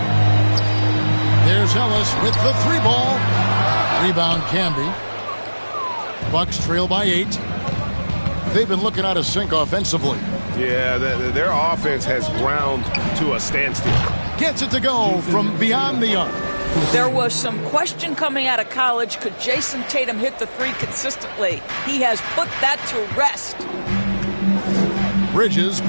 There's Ellis with the 3-ball. Rebound Camby. Bucks trail by 8. They've been looking out of sync offensively. Yeah, their offense has ground to a standstill. Gets it to go from beyond the arc. There was some question coming out of college. Could Jason Tatum hit the 3 consistently? He has put that to rest. Bridges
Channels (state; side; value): inverted; both; correlation -1.00